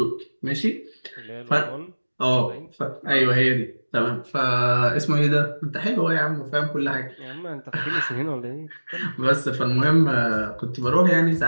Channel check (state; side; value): inverted; both; correlation -1.00